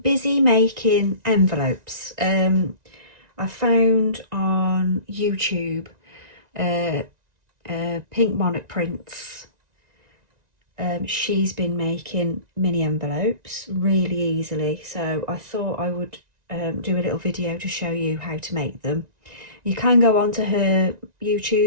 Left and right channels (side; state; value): left; late; 1.9 ms